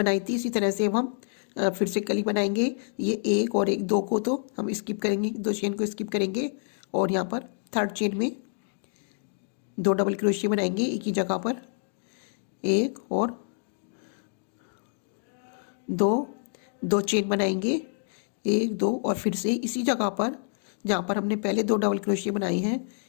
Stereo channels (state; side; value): silent; right; digital silence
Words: थी इसी तरह से अब हम फिर से कली बनाएंगे। ये 1 और 1 2 को तो हम स्किप करेंगे, 2 चेन को स्किप करेंगे और यहाँ पर थर्ड चेन में 2 डबल क्रोशिया बनाएंगे एक ही जगह पर, 1 और 2 चेन बनाएंगे, 1 2 और फिर से इसी जगह पर जहाँ पर हमने पहले 2 डबल क्रोशिया बनाए हैं